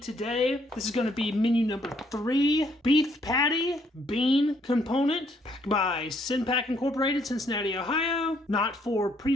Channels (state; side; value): normal; both; correlation 0.69